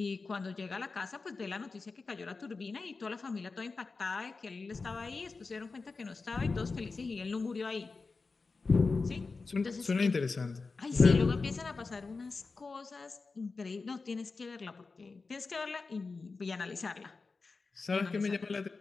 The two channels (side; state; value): right; quieter; 4.1 dB